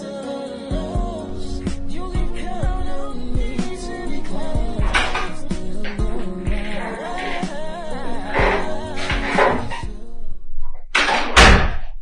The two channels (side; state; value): both; identical; correlation 1.00